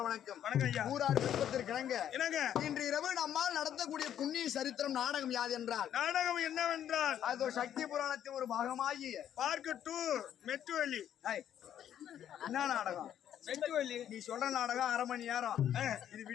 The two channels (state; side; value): quieter; right; 10.3 dB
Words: வணக்கம் வணக்கம். ஊரார் விருப்பத்திற்கு இணங்க இன்று இரவு நம்மால் நடத்தக்கூடிய புண்ணிய சரித்திரம் நாடகம் யாது என்றால் நாடகம் என்னவென்றால் அது ஒரு சக்தி புராணத்தின் ஒரு பாகமாகி பார்க்க டூ மெட்டுவலி. என்ன நாடகம்? மெட்டுவலி. நீ சொல்ற நாடகம் 1/2 மணி நேரம். இது